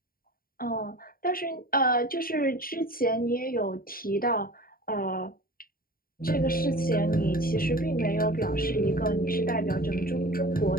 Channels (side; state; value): right; late; 0.42 ms